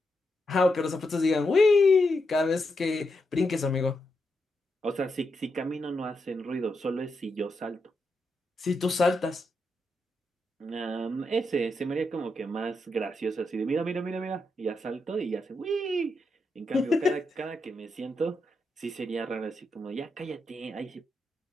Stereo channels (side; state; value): both; normal; correlation 0.84